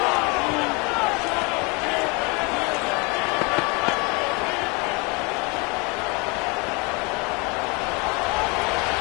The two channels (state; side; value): quieter; right; 29.6 dB